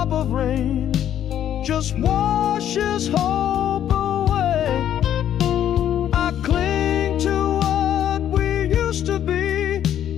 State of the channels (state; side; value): quieter; right; 10.6 dB